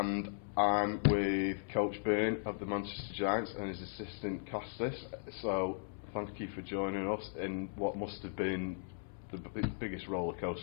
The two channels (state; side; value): silent; right; 53 dB below the other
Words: I'm with Coach Byrne of the Manchester Giants and his assistant Kostis. So thank you for joining us in what must have been the biggest roller